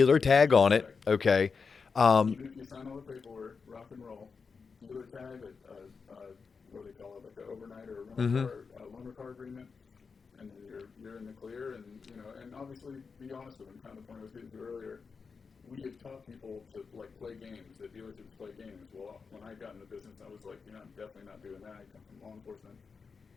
tag on it. Okay. Even if you sign all the paperwork, rock and roll, dealer tag, what do they call it, like an overnight or a loaner car agreement, and then you're in the clear, and you know, and obviously be honest with them. Kind of the point I was getting to earlier. We had taught people to like play games. The dealerships play games. Well, when I got in the business, I was like, you know, I'm definitely not doing that. I come from law enforcement.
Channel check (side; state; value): right; quieter; 5.2 dB